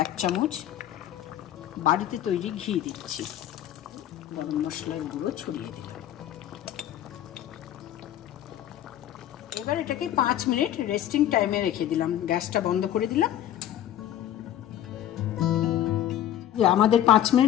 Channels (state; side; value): quieter; right; 11.7 dB